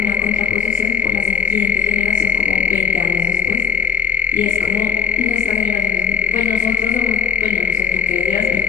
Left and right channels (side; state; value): right; quieter; 5.6 dB